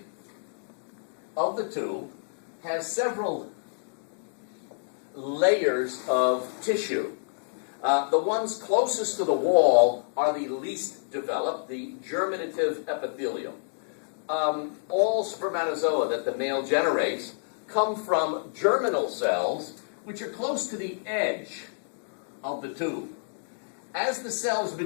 of the tube has several layers of tissue. The ones closest to the wall are the least developed, the germinative epithelium. All spermatozoa that the male generates come from germinal cells, which are close to the edge of the tube. As the cells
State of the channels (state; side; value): silent; right; digital silence